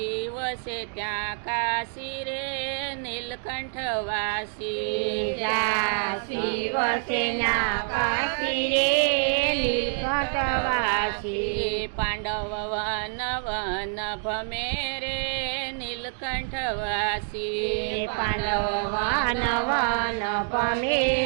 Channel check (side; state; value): left; silent; digital silence